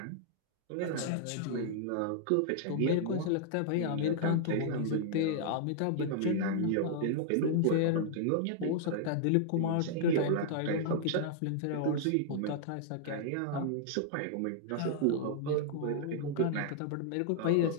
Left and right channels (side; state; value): both; different; correlation -0.01